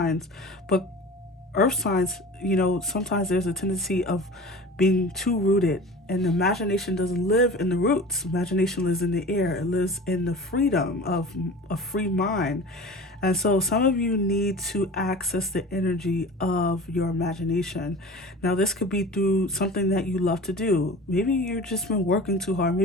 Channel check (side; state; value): both; normal; correlation 0.37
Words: but earth signs, sometimes there's a tendency of being too rooted, and imagination doesn't live in the roots. Imagination lives in the air. It lives in the freedom of a free mind. And so some of you need to access the energy of your imagination. Now, this could be through something that you love to do. Maybe you've just been working too hard.